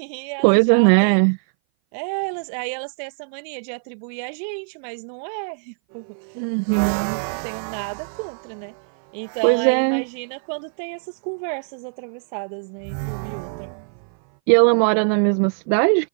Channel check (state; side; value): silent; left; 59 dB below the other